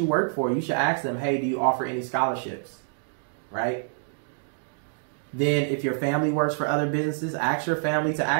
work for, you should ask them, hey, do you offer any scholarships? Right? Then if your family works for other businesses, ask your family to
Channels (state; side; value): silent; left; digital silence